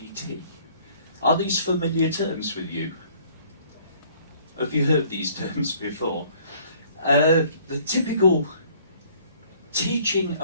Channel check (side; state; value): both; inverted; correlation -0.58